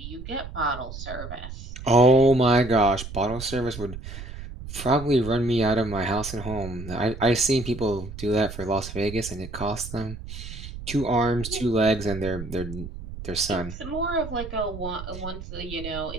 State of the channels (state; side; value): noise; right; rumble, 10 dB below the sound